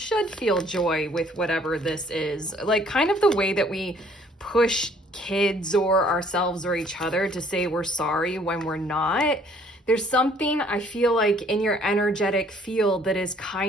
feel joy with whatever this is. Like, kind of the way that we push kids or ourselves or each other to say we're sorry when we're not. There's something I feel like in your energetic field that is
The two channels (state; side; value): normal; both; correlation 0.60